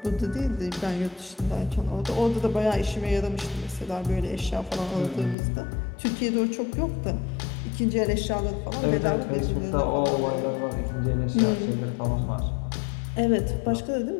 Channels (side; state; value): right; drops out; at 5.4 s